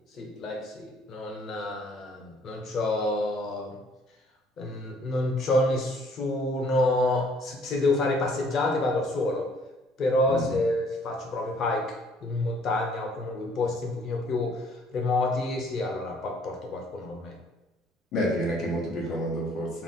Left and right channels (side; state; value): both; normal; correlation 0.61